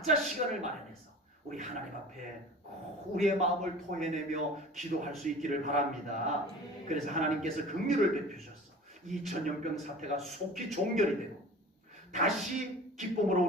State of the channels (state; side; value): normal; both; correlation 0.40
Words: 시간을 마련해서 우리 하나님 앞에 우리의 마음을 토해내며 기도할 수 있기를 바랍니다. 그래서 하나님께서 긍휼을 베푸셔서 이 전염병 사태가 속히 종결이 되고 다시 기쁨으로